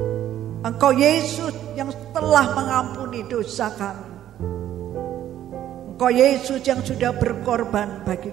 Engkau Yesus yang telah mengampuni dosa kami. Engkau Yesus yang sudah berkorban bagi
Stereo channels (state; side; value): quieter; left; 11.8 dB